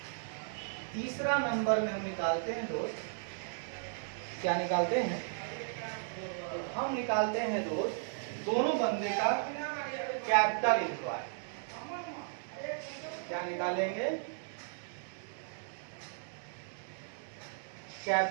तीसरा नंबर में हम निकालते हैं दोस्त, क्या निकालते हैं, तो हम निकालते हैं दोस्त दोनों बंदे का कैपिटल एम्प्लॉयड। क्या निकालेंगे,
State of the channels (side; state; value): left; silent; 54 dB below the other